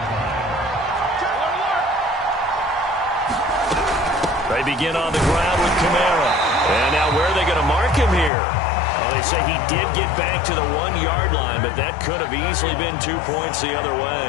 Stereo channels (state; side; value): drops out; right; at 8.3 s